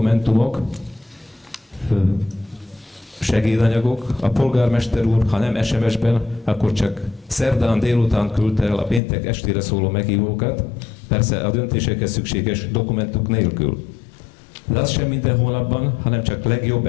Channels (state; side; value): drops out; right; at 9.0 s